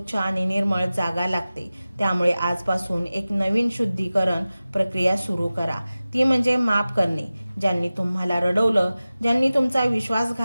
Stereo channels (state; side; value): inverted; both; correlation -0.97